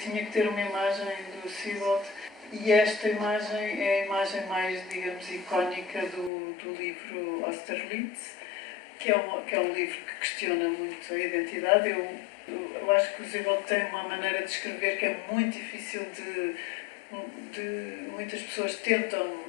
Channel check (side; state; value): right; drops out; at 6.3 s